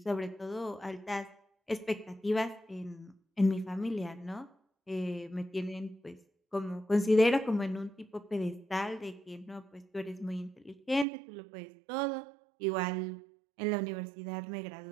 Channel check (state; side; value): drops out; left; at 11.1 s